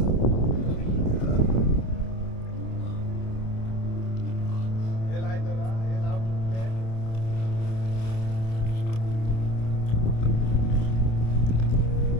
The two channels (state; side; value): late; right; 27 ms